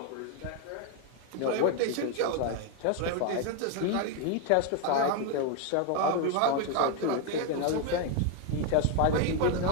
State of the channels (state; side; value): different; both; correlation 0.01